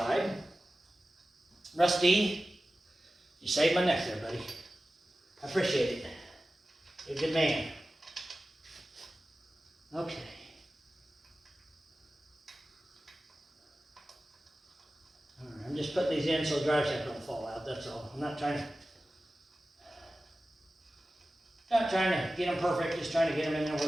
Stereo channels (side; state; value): both; normal; correlation 0.95